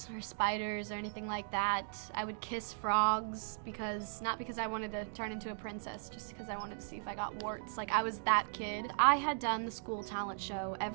or spiders or anything like that. I would kiss frogs not because I wanted to turn into a princess, just because I wanted to see if I got warts. Like, I was that kid. I had done the school talent show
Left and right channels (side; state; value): left; silent; digital silence